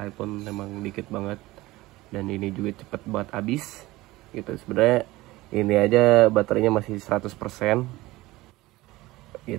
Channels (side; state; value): left; quieter; 19.0 dB